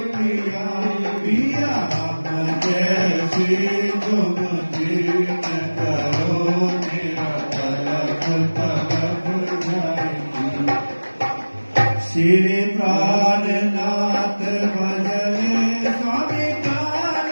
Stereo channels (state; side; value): inverted; both; correlation -1.00